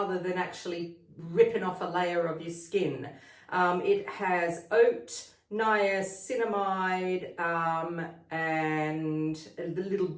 than actually ripping off a layer of your skin. It has oat, niacinamide, and the little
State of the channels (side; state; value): both; identical; correlation 1.00